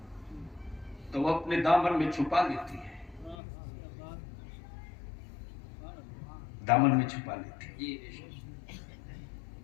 तो वो अपने दामन में छुपा लेती है, दामन में छुपा लेती है।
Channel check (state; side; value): drops out; right; at 3.4 s